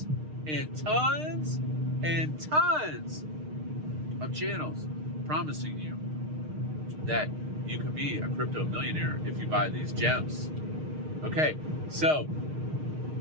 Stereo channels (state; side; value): late; left; 6.5 ms